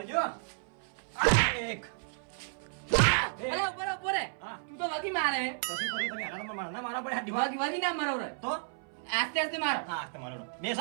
એક અલે ઉપર રે હા. તું તો વગી મારે તો શું કર્યું તમે હારામાં મારના મારા પડે હાથ દિમાગ વગી ના મારો રે તો આસ્તે આસ્તે મારો હા તમારો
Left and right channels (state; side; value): silent; left; 56 dB below the other